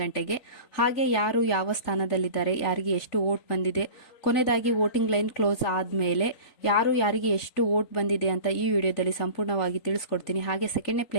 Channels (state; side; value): late; right; 3.9 ms